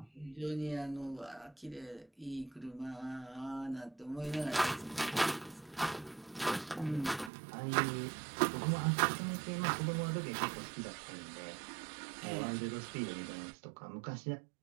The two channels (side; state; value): left; drops out; at 7.3 s